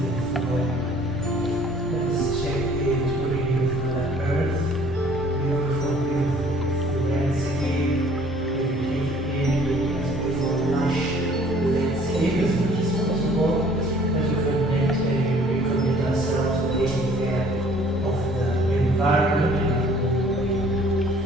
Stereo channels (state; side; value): normal; both; correlation 0.55